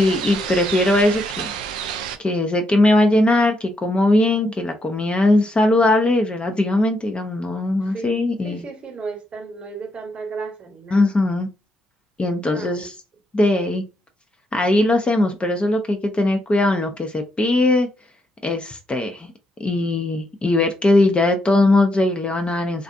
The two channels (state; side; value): normal; both; correlation 0.78